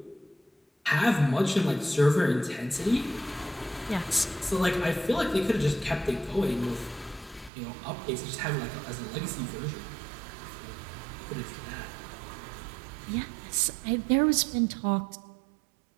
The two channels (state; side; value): drops out; left; at 7.5 s